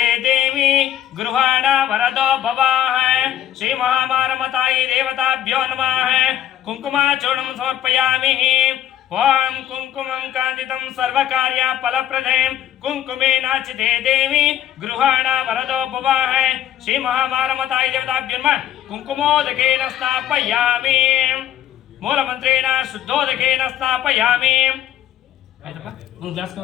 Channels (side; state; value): right; quieter; 11.3 dB